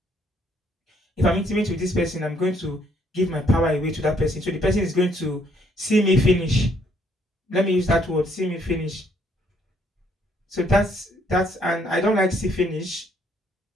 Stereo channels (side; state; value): both; normal; correlation 0.68